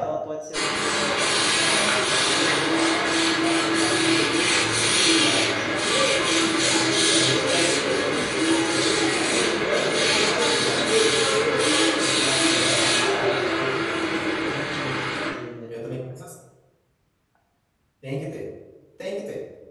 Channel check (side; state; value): both; identical; correlation 1.00